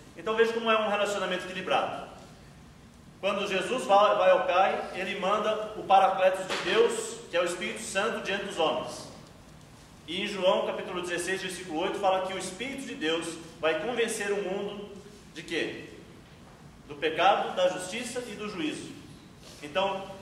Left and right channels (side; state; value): both; identical; correlation 1.00